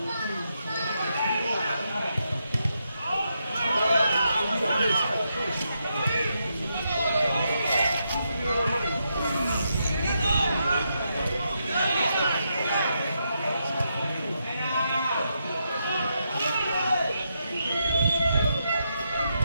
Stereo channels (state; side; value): inverted; both; correlation -0.82